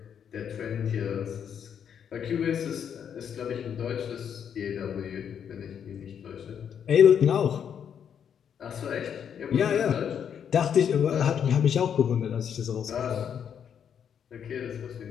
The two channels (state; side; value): quieter; right; 8.2 dB